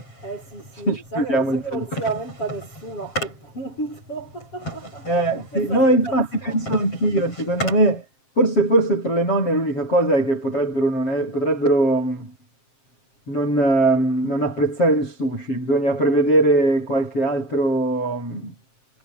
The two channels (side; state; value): right; late; 7.6 ms